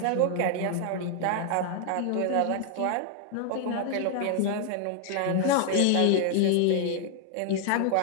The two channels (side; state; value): both; different; correlation 0.00